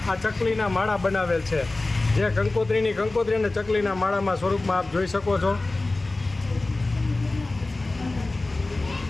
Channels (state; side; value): quieter; right; 3.1 dB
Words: આ ચકલીના માળા બનાવેલ છે, જે કંકોત્રી અને ચકલીના માળામાં સ્વરૂપમાં આપ જોઈ શકો છો।